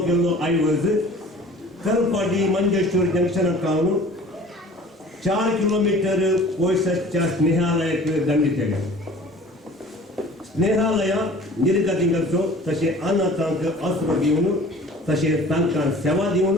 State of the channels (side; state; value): both; normal; correlation 0.46